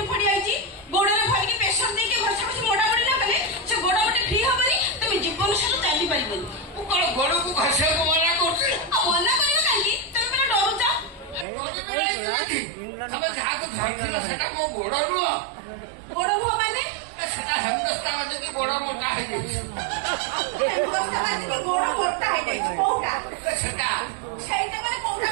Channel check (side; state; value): left; drops out; at 11.5 s